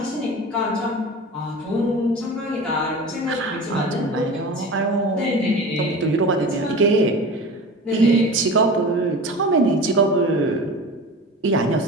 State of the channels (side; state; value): both; normal; correlation 0.34